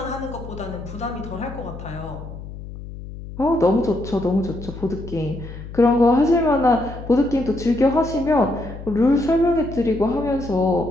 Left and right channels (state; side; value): noise; left; hum, 12 dB below the sound